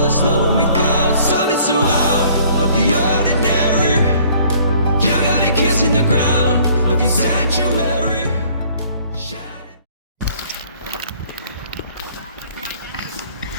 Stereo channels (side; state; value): both; inverted; correlation -0.57